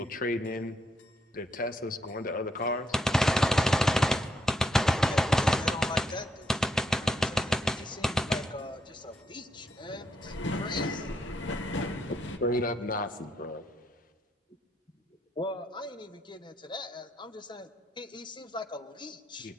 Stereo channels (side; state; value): both; normal; correlation 0.77